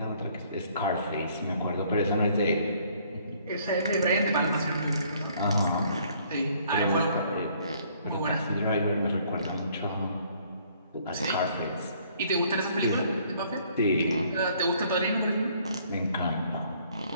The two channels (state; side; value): inverted; both; correlation -0.62